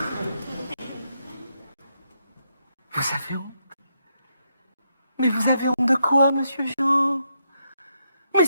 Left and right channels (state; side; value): inverted; both; correlation -0.80